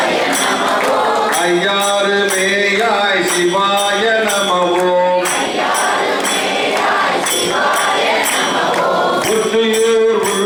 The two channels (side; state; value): both; identical; correlation 1.00